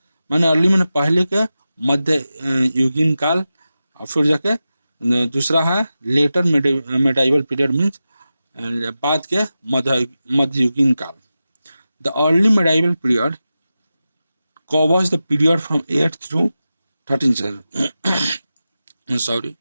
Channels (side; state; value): both; inverted; correlation -0.93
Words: मैंने अर्ली मैंने पहले के मध्य युगीन काल, और फिर जाके दूसरा है लेटर मिडाइवल पीरियड, मीन्स बाद के मध्ययुगीन काल। The early medieval period covers the period from 8th through 13th century। Sorry,